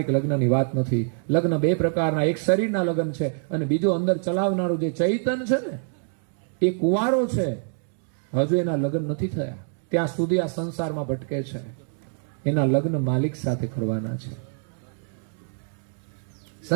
લગ્નની વાત નથી. લગ્ન બે પ્રકારના, એક શરીરના લગ્ન છે અને બીજું અંદર ચલાવનારું જે ચૈતન છે ને એ કુંવારો છે, હજુ એના લગ્ન નથી થયા, ત્યાં સુધી આ સંસારમાં ભટકે છે. એના લગ્ન માલિક સાથે કરવાના છે.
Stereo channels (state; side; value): silent; left; 57 dB below the other